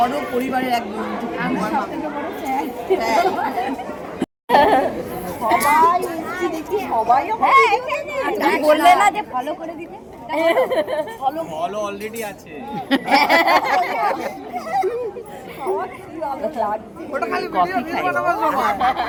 পরিবারের এক বন্ধু, সবাই এসেছি দেখি, সবাই বললে না যে ফলো করে দিতে, ফলো অলরেডি আছে। কফি খাই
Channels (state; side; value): identical; both; correlation 1.00